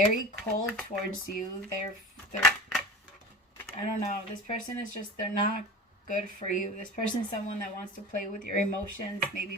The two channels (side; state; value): both; normal; correlation 0.33